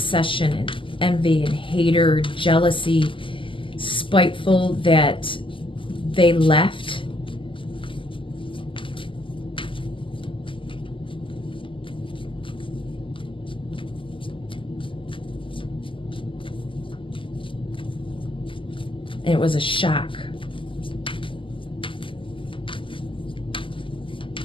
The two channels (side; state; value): right; late; 0.25 ms